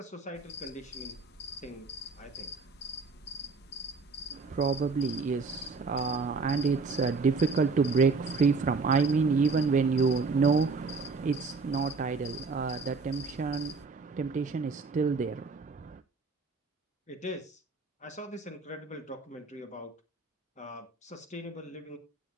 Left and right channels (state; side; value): quieter; left; 4.3 dB